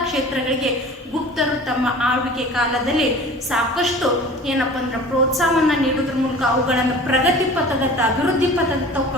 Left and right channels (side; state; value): both; normal; correlation 0.42